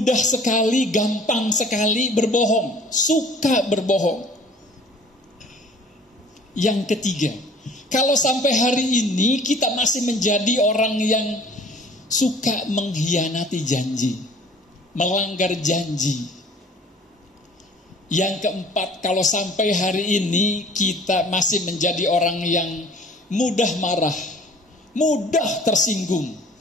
sekali, gampang sekali berbohong, suka berbohong. Yang ketiga, kalau sampai hari ini kita masih menjadi orang yang suka mengkhianati janji, melanggar janji. Yang keempat, kalau sampai hari ini kita masih menjadi orang yang mudah marah, mudah tersinggung.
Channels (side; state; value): both; normal; correlation 0.50